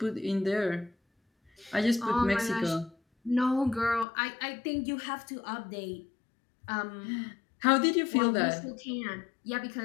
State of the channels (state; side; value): drops out; right; at 4.0 s